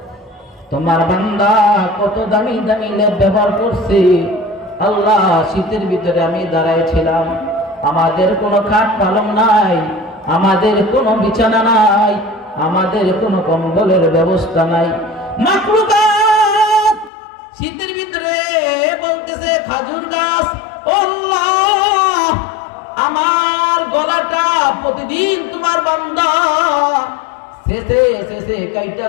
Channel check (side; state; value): right; drops out; at 17.1 s